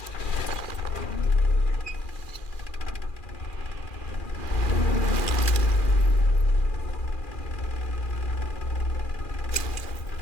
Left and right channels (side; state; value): right; late; 2.4 ms